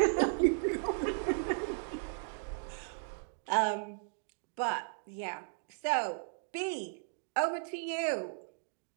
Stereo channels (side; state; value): left; silent; digital silence